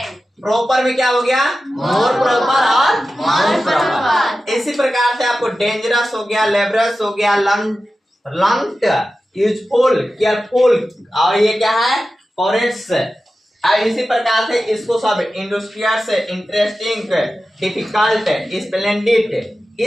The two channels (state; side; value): normal; both; correlation 0.94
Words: प्रॉपर में क्या हो गया, मोर प्रॉपर और मोस्ट प्रॉपर। इसी प्रकार से आपको डेंजरस हो गया, लेबरस हो गया, लंग्ड, यूजफुल, केयरफुल, और ये क्या है, करेक्ट्स। और इसी प्रकार से इसको सब इंडस्ट्रियस, इंटरेस्टिंग, डिफिकल्ट, स्प्लेंडिड,